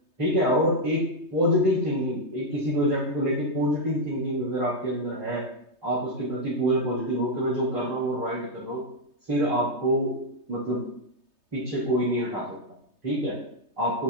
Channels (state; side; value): late; left; 3.3 ms